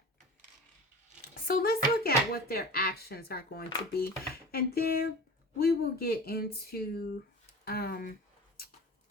So let's look at what their actions are going to be, and then we will get into try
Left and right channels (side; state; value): both; normal; correlation 0.35